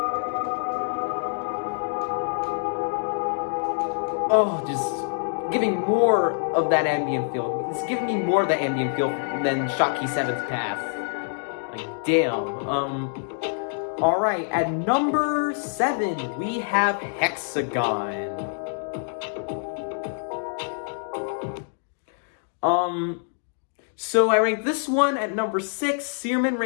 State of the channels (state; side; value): silent; right; digital silence